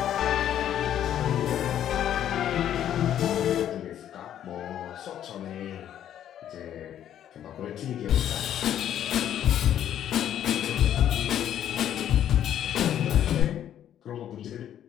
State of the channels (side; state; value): right; quieter; 10.6 dB